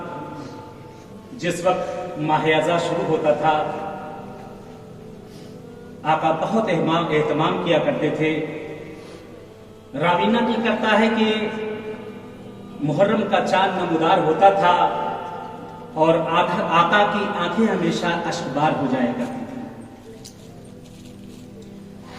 جس وقت ماہ اعزاز شروع ہوتا تھا آقا بہت اہتمام کیا کرتے تھے۔ راوی نقل کرتا ہے کہ محرم کا چاند نمودار ہوتا تھا اور آقا کی آنکھیں ہمیشہ اشکبار ہو جایا کرتی تھی۔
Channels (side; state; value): both; identical; correlation 1.00